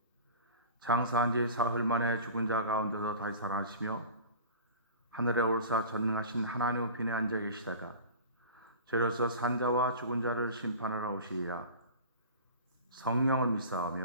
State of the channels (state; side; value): inverted; both; correlation -0.38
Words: 장사한 지 사흘 만에 죽은 자 가운데서 다시 살아나시며 하늘에 올사 전능하신 하나님 우편에 앉아 계시다가 저로서 산자와 죽은 자를 심판하러 오시리라. 성령을